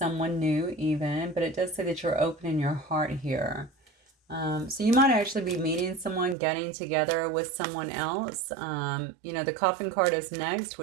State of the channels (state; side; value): drops out; left; at 6.4 s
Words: new even, but it does say that you're opening your heart here. So you might actually be meeting someone, getting together with someone else. You know, the coffin card is next,